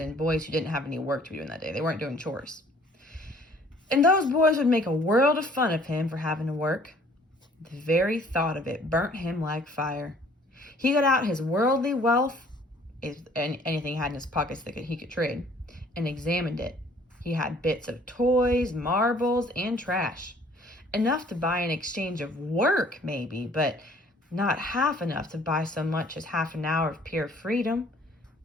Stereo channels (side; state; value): both; normal; correlation 0.57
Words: boys who didn't have any work to be doing that day. They weren't doing chores. And those boys would make a world of fun of him for having to work. The very thought of it burnt him like fire. He got out his worldly wealth, anything he had in his pockets that he could trade, and examined it. He had bits of toys, marbles, and trash. Enough to buy in exchange of work, maybe, but not half enough to buy so much as half an hour of pure freedom.